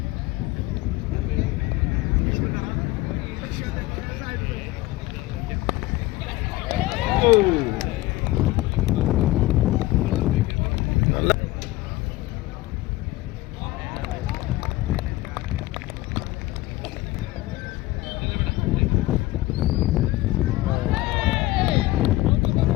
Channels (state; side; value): quieter; right; 18.2 dB